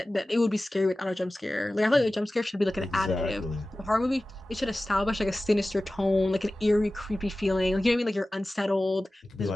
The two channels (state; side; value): normal; both; correlation 0.96